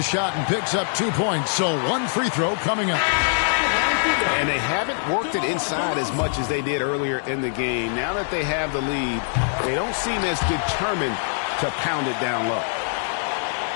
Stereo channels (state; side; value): silent; right; digital silence